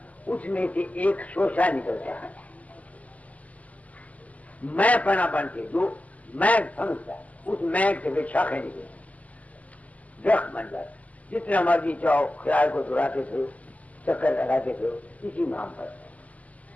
उसमें से एक शोषा निकलता है। मैं पना बन के जो मैं समझता उस मैं से शाखें निकलती, दरख्त बन जाता। जितना मर्जी चाहो ख्याल को दुराते थे, चक्कर लगाते थे, इसी नाम पर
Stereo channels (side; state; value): right; late; 0.073 ms